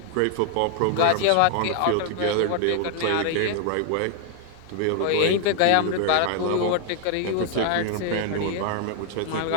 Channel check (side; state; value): both; different; correlation 0.00